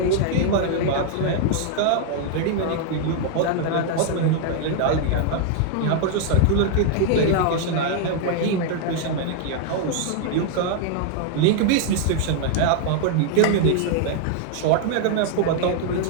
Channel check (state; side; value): different; both; correlation 0.00